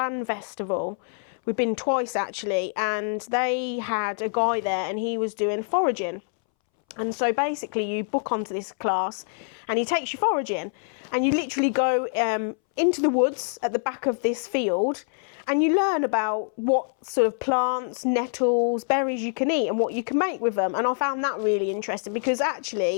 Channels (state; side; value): silent; right; 61 dB below the other